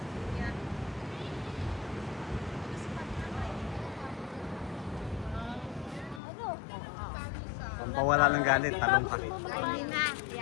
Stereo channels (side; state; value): right; drops out; at 6.2 s